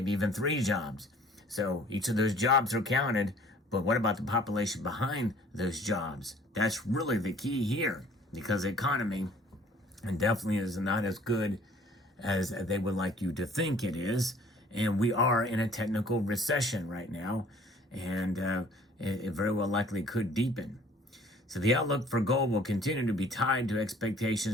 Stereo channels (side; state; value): both; normal; correlation 0.54